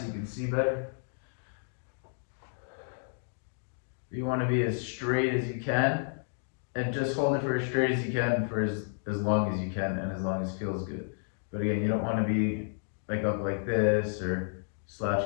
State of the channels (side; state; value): right; silent; digital silence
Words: you can see better. You want to be as straight as you can, and just hold it for as straight as you can for as long as you can and as long as it feels good. But again, you don't want to be like up like this or